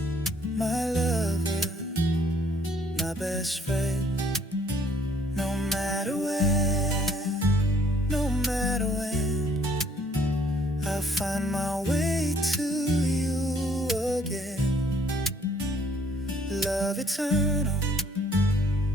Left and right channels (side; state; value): both; normal; correlation 0.63